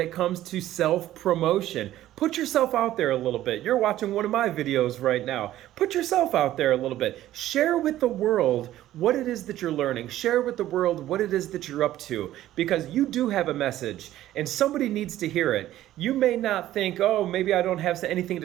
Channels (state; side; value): quieter; left; 13.8 dB